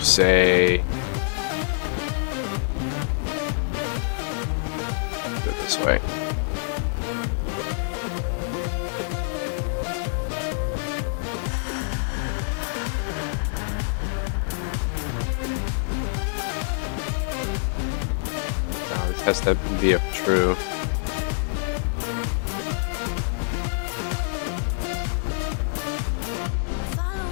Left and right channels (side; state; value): right; silent; digital silence